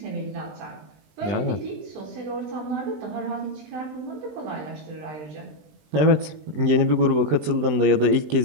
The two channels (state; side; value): late; left; 20 ms